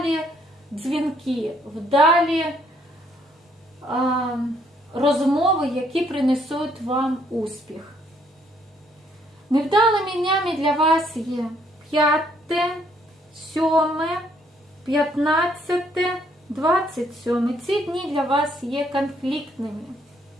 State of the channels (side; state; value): both; normal; correlation 0.68